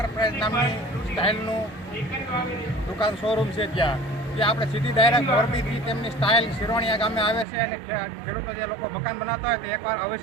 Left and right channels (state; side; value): drops out; left; at 7.5 s